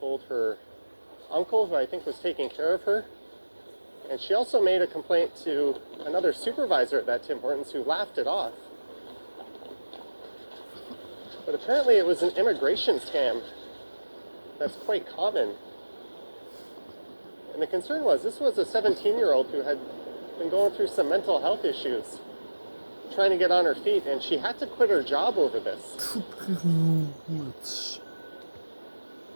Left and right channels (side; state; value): both; inverted; correlation -1.00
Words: her uncle, who I think was taking care of her. And she also made a complaint to another supervisor at that Tim Hortons, who laughed it off. But apparently it was an immigration scam that's quite common. And the concern was, this was a 17-year-old who had been going through some mental health issues, trying to get on her feet, and she had to quit her job over this.